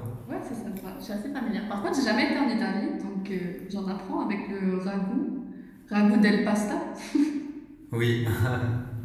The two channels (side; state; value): both; identical; correlation 1.00